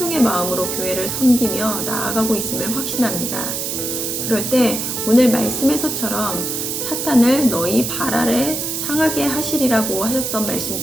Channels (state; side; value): noise; right; hiss, 3 dB below the sound